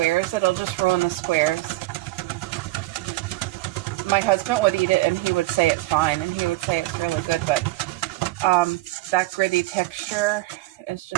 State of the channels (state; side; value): quieter; left; 18.3 dB